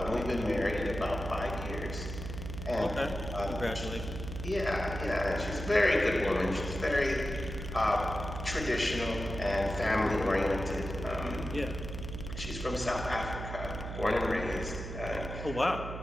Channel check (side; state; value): right; noise; hum, 7 dB below the sound